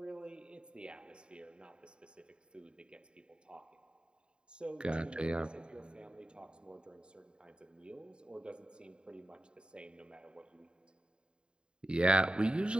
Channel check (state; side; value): late; left; 0.050 ms